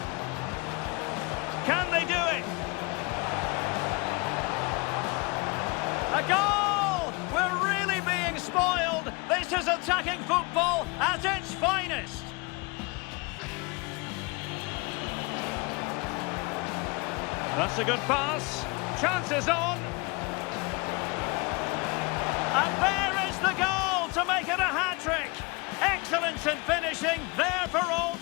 Can they do it? A goal! We're really being spoiled. This is attacking football at its finest. That's a good pass. Chances on. And there is the goal to make it a hat-trick. Excellence in finishing, there for all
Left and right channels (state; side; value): quieter; right; 28.1 dB